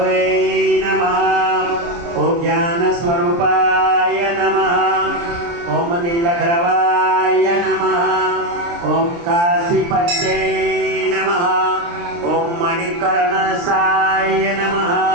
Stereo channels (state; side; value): late; left; 29 ms